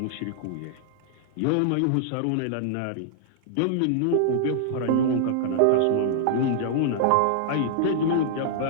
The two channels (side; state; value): both; different; correlation -0.01